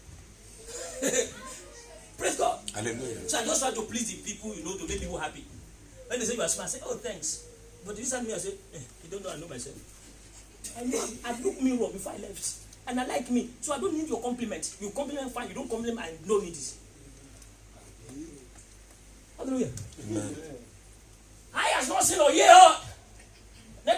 Praise God. Hallelujah. So I just try to please the people, to make people happy. When they say you are smart, I say, oh, thanks. But this time I say, you don't know, I know myself. I know I look me wrong before I left. And I like me. So I don't need your compliment. You compliment fine, you don't compliment, I don't need it. Hallelujah. Amen. I has not seen or hear. Let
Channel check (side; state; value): both; identical; correlation 1.00